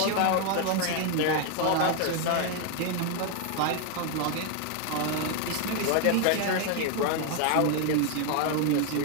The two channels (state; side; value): different; both; correlation 0.01